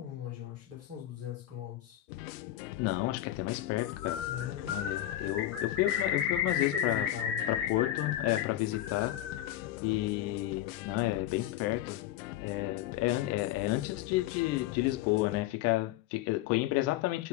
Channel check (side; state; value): right; quieter; 13.6 dB